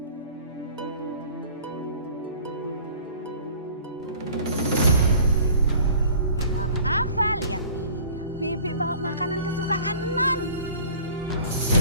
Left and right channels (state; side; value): inverted; both; correlation -0.48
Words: Non Afa, lihat nih. Bibi bawa makanan kesukaan Non.